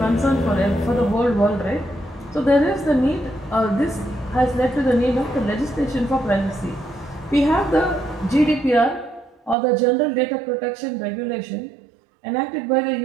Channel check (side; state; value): left; drops out; at 9.6 s